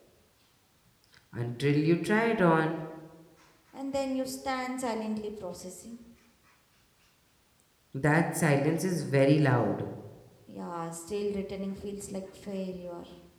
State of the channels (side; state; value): both; identical; correlation 1.00